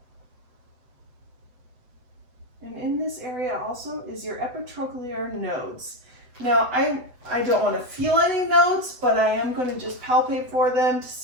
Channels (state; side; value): late; left; 8.0 ms